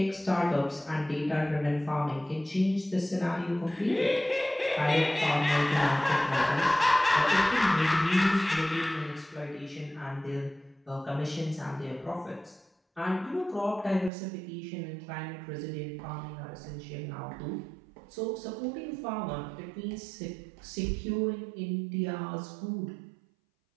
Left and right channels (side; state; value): left; drops out; at 14.1 s